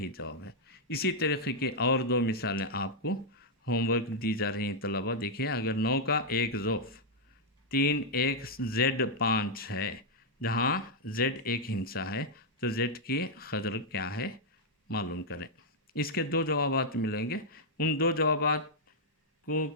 جواب ہے۔ اسی طریقے کی اور دو مثالیں آپ کو ہوم ورک دی جا رہی ہیں طلبہ، دیکھیے اگر 9 کا ایک ضعف 3 ایک زیڈ 5 ہے، جہاں زیڈ ایک ہندسہ ہے تو زیڈ کی قدر کیا ہے معلوم کریں۔ اس کے دو جوابات ملیں گے، ان دو جوابات کو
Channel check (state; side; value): normal; both; correlation -0.04